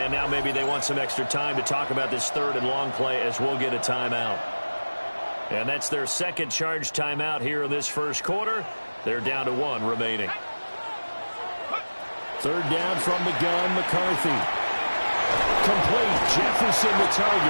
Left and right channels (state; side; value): inverted; both; correlation -1.00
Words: now maybe they want some extra time to talk about this 3rd and long play as we'll get a timeout. And that's their 2nd charge timeout here in this 1st quarter. They're down to 1 remaining. 3rd down from the gun, McCarthy. Complete. Jefferson the